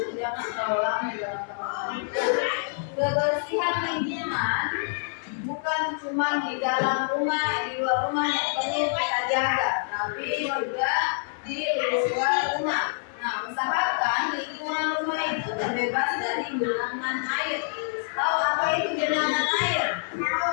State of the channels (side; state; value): right; silent; 60 dB below the other